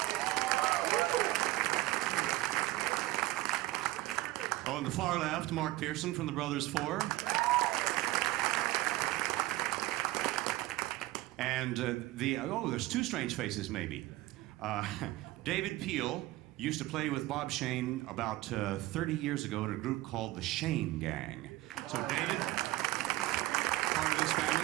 On the far left, Mark Pearson from the Brothers Four. And there's two strange faces maybe. David Peel used to play with Bob Shane about 30 years ago in a group called the Shane Gang. So David, part of this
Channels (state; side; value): quieter; left; 17.9 dB